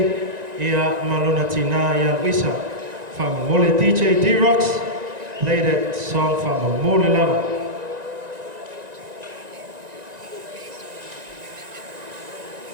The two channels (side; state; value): left; late; 1.9 ms